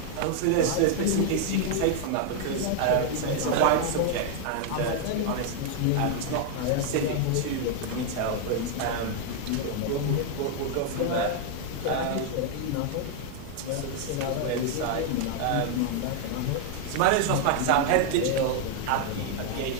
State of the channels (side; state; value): both; different; correlation 0.00